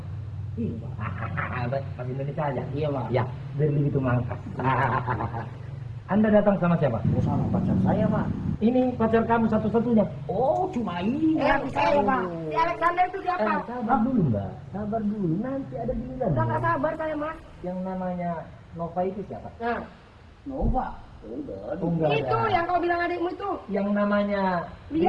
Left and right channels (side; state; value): both; identical; correlation 1.00